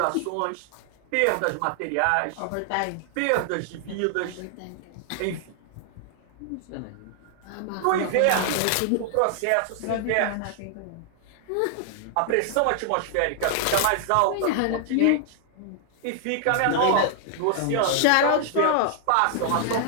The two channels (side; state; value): both; different; correlation 0.00